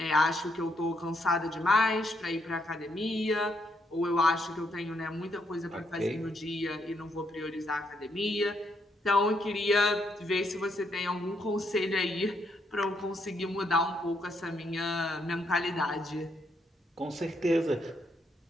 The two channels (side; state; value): both; normal; correlation 0.75